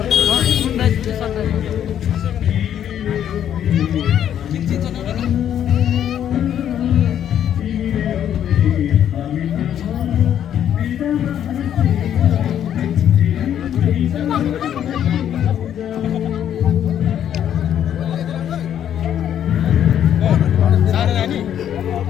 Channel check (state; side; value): quieter; right; 10.0 dB